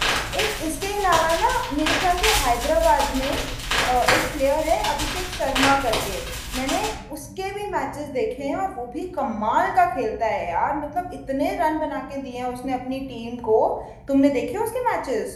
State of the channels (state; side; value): identical; both; correlation 1.00